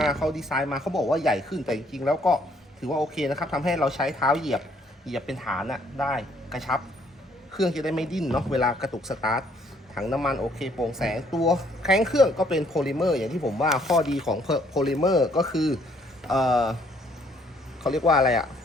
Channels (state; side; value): normal; both; correlation 0.65